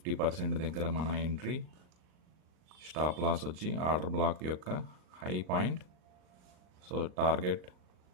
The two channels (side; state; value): left; late; 39 ms